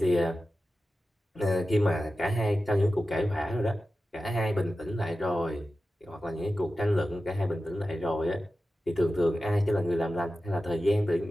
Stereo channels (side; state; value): both; normal; correlation 0.93